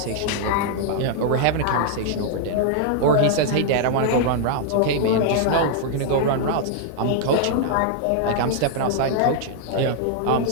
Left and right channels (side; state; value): both; different; correlation -0.01